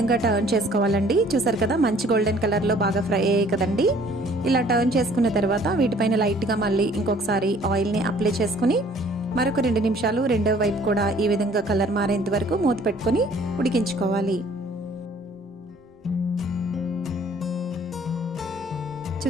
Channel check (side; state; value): both; normal; correlation 0.56